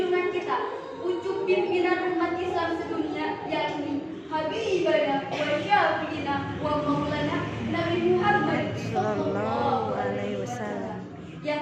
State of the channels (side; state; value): both; identical; correlation 1.00